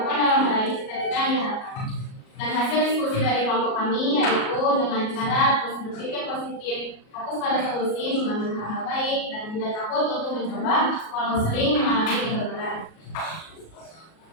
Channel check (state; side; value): late; right; 37 ms